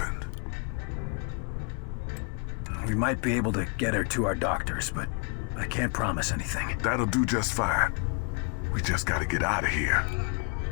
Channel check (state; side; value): quieter; right; 37.9 dB